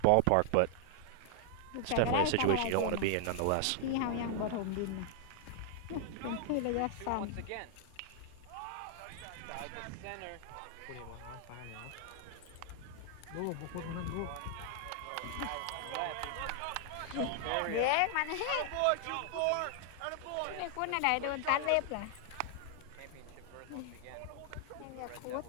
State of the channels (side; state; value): both; different; correlation 0.00